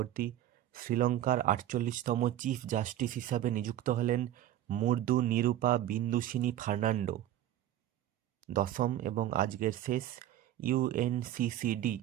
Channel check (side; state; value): left; quieter; 12.6 dB